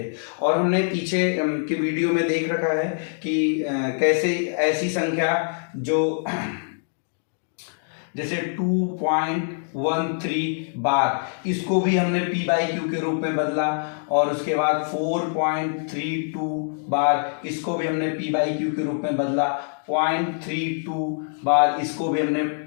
और हमने पीछे के वीडियो में देख रखा है कि कैसे ऐसी संख्या जो जैसे 2.13 बार, इसको भी हमने P बाई Q के रूप में बदला, और उसके बाद 4.32 बार, इसको भी हमने P बाई Q के रूप में बदला। 0.32 बार, इसको भी हमने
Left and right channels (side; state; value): right; silent; digital silence